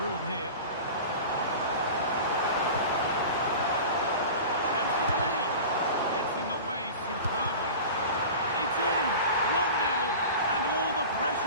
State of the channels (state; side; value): inverted; both; correlation -0.34